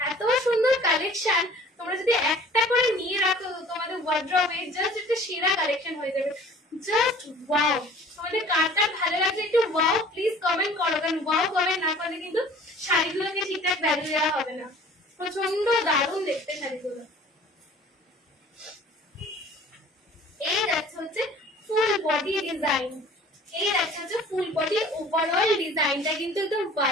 এত সুন্দর কালেকশন, তোমরা যদি একটা করে নিয়ে রাখো তোমাদের ওয়ার্ড্রপে, জাস্ট একটা সেরা কালেকশন হয়ে যাবে। জাস্ট ওয়াও, তোমাদের কারটা ভালো লাগছে একটু ওয়াও প্লিজ কমেন্ট করো, কারণ ওয়াও কমেন্ট না করলে কিন্তু শাড়িগুলোকে ঠিকঠাক ভ্যালু দেওয়া হবে না। প্রচন্ড দারুণ দেখতে শাড়িগুলো। এই যাচ্ছে হচ্ছে ফুল বডি ডিজাইন, এই যাচ্ছে হচ্ছে ফুল বডি ওভারঅল ডিজাইনটা কিন্তু একদম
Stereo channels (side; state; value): both; normal; correlation 0.48